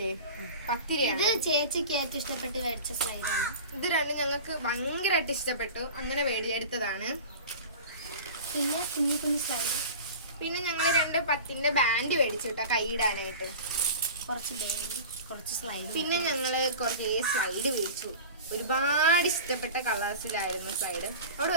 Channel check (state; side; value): inverted; both; correlation -0.35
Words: 10 രൂപയാണ്. ഇത് ചേച്ചിക്ക് ഏറ്റവും ഇഷ്ടപ്പെട്ട് മേടിച്ച സ്ലൈഡാണ്. ഇത് രണ്ടും ഞങ്ങൾക്ക് ഭയങ്കരമായിട്ട് ഇഷ്ടപ്പെട്ടു. അങ്ങനെ എടുത്തതാണ്. പിന്നെ കുഞ്ഞു കുഞ്ഞു സ്ലൈഡ്. പിന്നെ ഞങ്ങൾ 2 10ന്റെ ബാൻഡ് മേടിച്ചു കേട്ടോ കൈയിടാനായിട്ട്. കുറച്ച് സ്ലൈഡ്. പിന്നെ ഞങ്ങള് കുറച്ച് സ്ലൈഡ് മേടിച്ചു. ഒരുപാട് ഇഷ്ടപ്പെട്ട കളേഴ്സിലായിരുന്നു സ്ലൈഡ്. അവിടെ